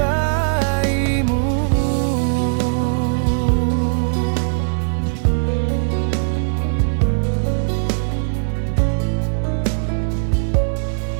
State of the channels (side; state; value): left; silent; digital silence